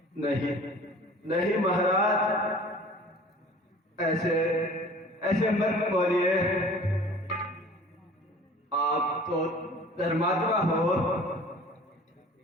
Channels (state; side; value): normal; both; correlation 0.46